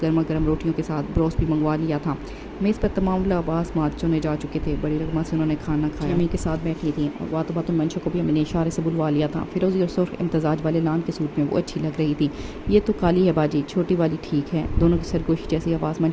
गर्मा गर्म रोटियों के साथ ब्रोस्ट भी मंगवा लिया था। मेज़ पर तमाम लबास मात चुने जा चुके थे। बड़ी रकमा से उन्होंने खाना खाया। अम्मी के साथ बैठी थी और बातों बातों मंशा को भी अम्मी ने इशारे से बुलवा लिया था। फिरोजी और सुर्ख इम्तजाज वाले लान के सूट में वो अच्छी लग रही थी। ये तो काली है बाजी, छोटी वाली ठीक है। दोनों की सरगोशी जैसी आवाज़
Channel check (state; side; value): identical; both; correlation 1.00